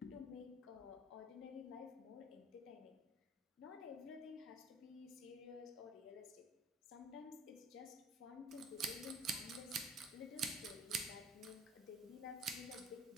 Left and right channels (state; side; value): normal; both; correlation 0.47